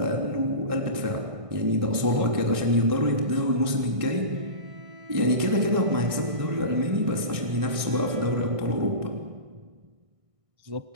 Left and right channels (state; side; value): late; left; 1.6 ms